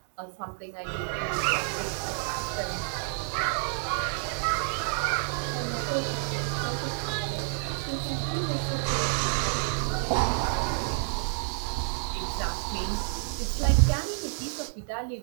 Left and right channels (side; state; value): left; silent; digital silence